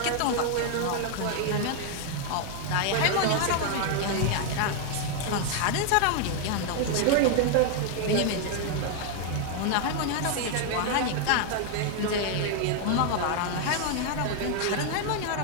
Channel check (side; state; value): both; different; correlation 0.00